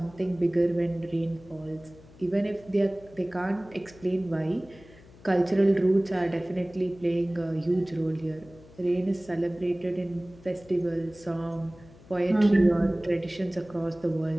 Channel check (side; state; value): left; noise; hum, 23 dB below the sound